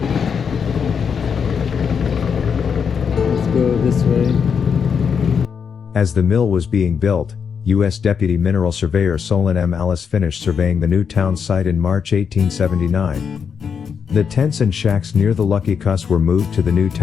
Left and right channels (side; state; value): right; quieter; 6.6 dB